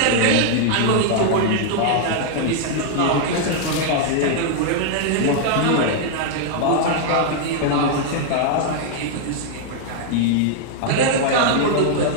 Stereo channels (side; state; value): both; different; correlation 0.00